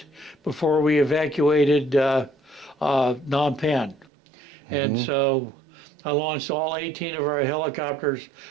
before we evacuated Phnom Penh. And so I launched all 18 of our helicopters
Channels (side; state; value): left; drops out; at 4.0 s